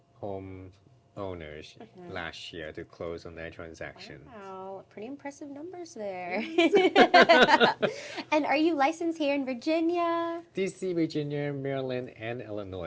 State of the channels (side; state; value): both; identical; correlation 1.00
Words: home owners last year to close on their transactions. Wow, pretty impressive numbers there. Yes. And are you licensed here in Virginia? DC, Virginia, Maryland, and